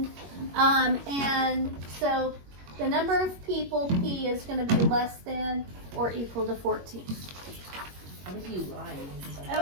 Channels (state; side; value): late; left; 21 ms